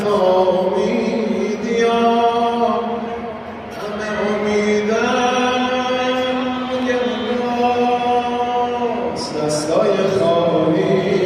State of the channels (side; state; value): both; identical; correlation 1.00